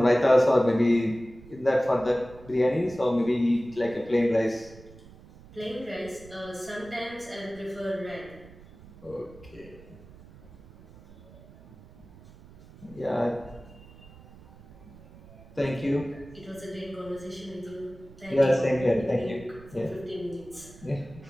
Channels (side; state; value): right; noise; rumble, 21 dB below the sound